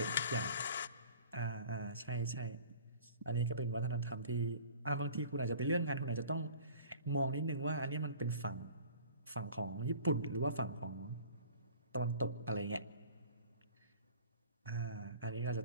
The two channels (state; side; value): inverted; both; correlation -0.46